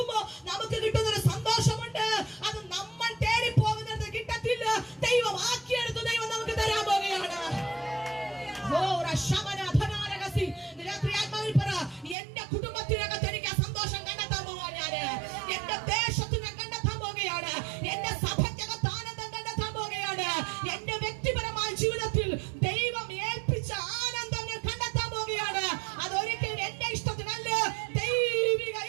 നമുക്ക് കിട്ടുന്ന ഒരു സന്തോഷമുണ്ട്. അത് നമ്മൾ തേടി പോകുന്നിടത്ത് കിട്ടത്തില്ല. ദൈവം ആക്കിയെടുത്ത് ദൈവം നമുക്ക് തരാൻ പോകുകയാണ്. രാത്രി ആത്മാവിൽ പറ, എന്റെ കുടുംബത്തിനകത്ത് എനിക്ക് സന്തോഷം കണ്ടെത്താൻ പോവാൻ ഞാന്, എന്റെ ദേശത്തിനെ കണ്ടെത്താൻ പോകുകയാണ്, എന്റെ സഭയ്ക്കകത്ത് ആനന്ദം കണ്ടെത്താൻ പോകുകയാണ്, എന്റെ വ്യക്തിപരമായ ജീവിതത്തിൽ ദൈവം ഏൽപ്പിച്ച ആനന്ദം ഞാൻ കണ്ടെത്താൻ പോകുകയാണ്. അതൊരിക്കലും എന്റെ ഇഷ്ടത്തിനല്ല, ദൈവിക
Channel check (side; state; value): left; drops out; at 12.2 s